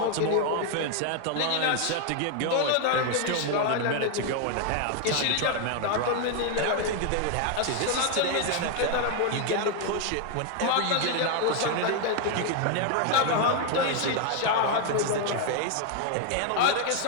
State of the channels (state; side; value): different; both; correlation 0.01